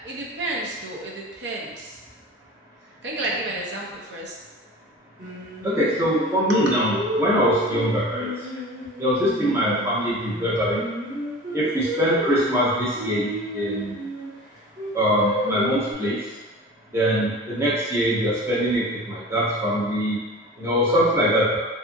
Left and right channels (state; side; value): normal; both; correlation 0.37